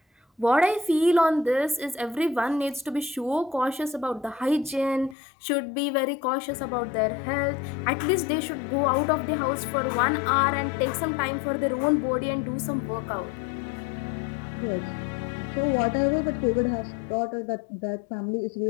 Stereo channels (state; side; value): drops out; right; at 5.2 s